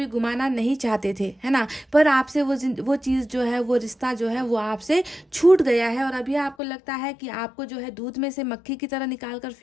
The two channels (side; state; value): right; drops out; at 6.6 s